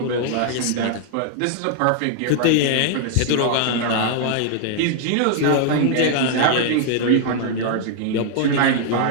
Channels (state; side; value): different; both; correlation 0.00